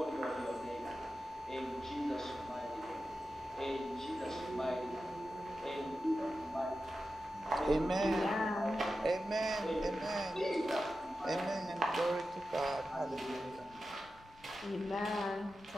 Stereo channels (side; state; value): left; noise; rumble, 24 dB below the sound